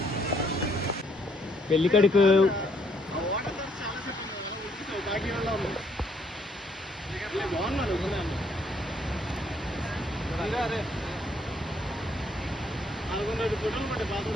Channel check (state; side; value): normal; both; correlation 0.68